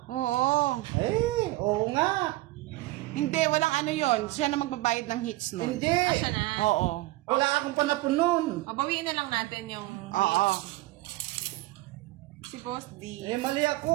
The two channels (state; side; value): quieter; left; 19.0 dB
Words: Oo. Eh, oo nga. Hindi, walang ano yon. Siya na magbabayad ng hits nun. Hindi. Siya na. Oo. Wala akong panapon nun. O, bawiin na lang natin yung Oo. si Boss D. Eh, mali